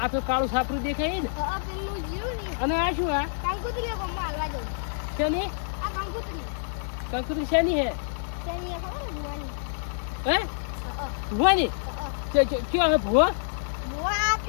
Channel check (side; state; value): right; silent; 60 dB below the other